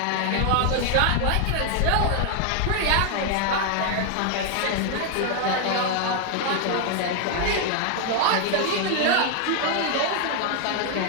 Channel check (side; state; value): both; different; correlation 0.00